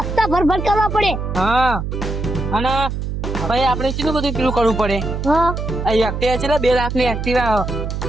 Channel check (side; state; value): right; noise; hum, 4 dB below the sound